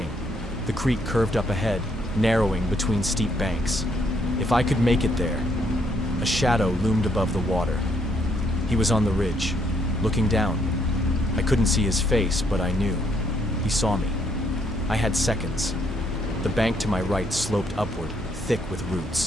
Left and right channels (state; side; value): normal; both; correlation 0.71